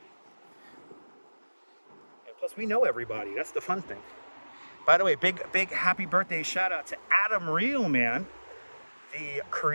And plus, we know everybody. That's the fun thing. By the way, big happy birthday shout out to Adam Reelman, the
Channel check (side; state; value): both; inverted; correlation -1.00